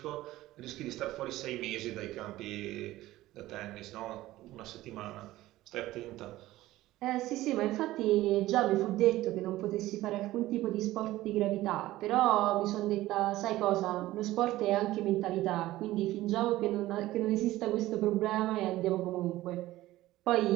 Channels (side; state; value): left; quieter; 16.4 dB